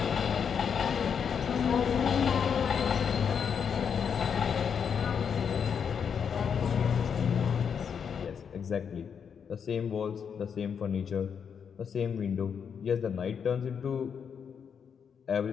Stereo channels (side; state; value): right; quieter; 7.1 dB